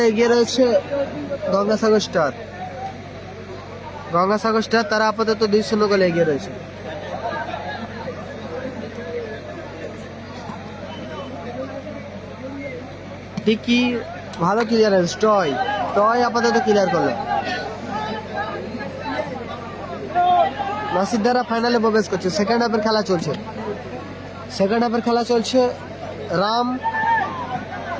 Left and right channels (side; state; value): both; identical; correlation 1.00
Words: এগিয়ে রয়েছে গঙ্গাসাগর স্টার। গঙ্গাসাগর স্টার তারা আপাতত 2-0 গোলে এগিয়ে রয়েছে। টিকি ভালো ক্লিয়ারেন্স, টয় আপাতত ক্লিয়ার করলো। নাসির দ্বারা ফাইনালে প্রবেশ করছে। সেকেন্ড হাফের খেলা চলছে। রাম,